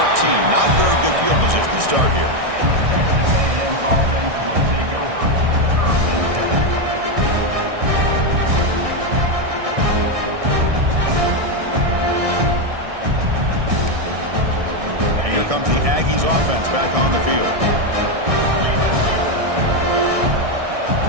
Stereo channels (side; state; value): left; late; 1.6 ms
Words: Not very good field position to start here. Comes the Aggies offense back on the field.